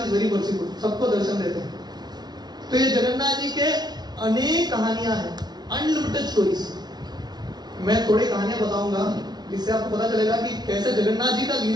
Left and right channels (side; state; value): left; late; 0.20 ms